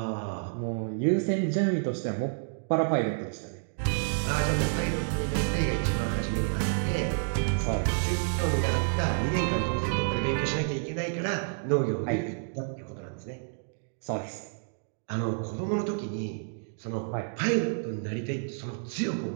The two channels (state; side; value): silent; left; digital silence